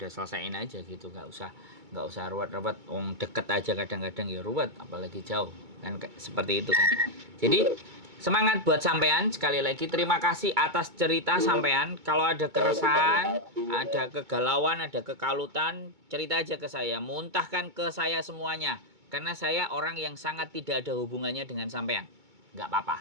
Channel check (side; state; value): left; late; 2.2 ms